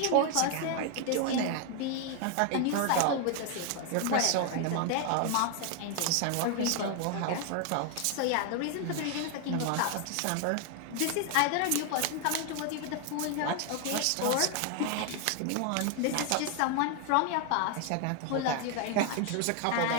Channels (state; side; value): different; both; correlation 0.00